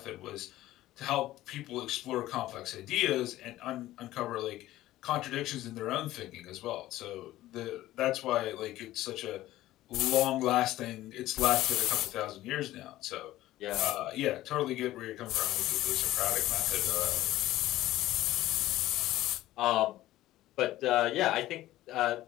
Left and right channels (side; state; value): right; quieter; 15.4 dB